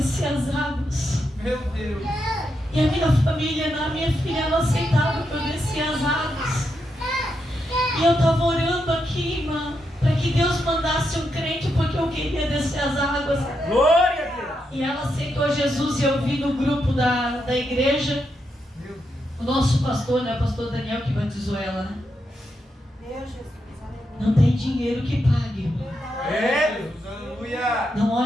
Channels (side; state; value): both; normal; correlation 0.83